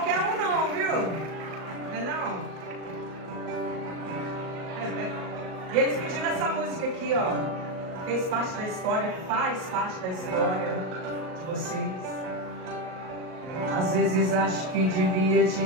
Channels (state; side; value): late; left; 38 ms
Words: um não, viu? Não é não? E eles pediram essa música aqui, ó. Fez parte da história, faz parte da história de vocês. Às vezes acho que devia te